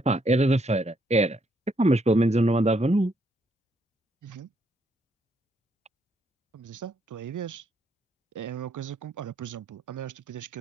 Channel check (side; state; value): both; normal; correlation 0.73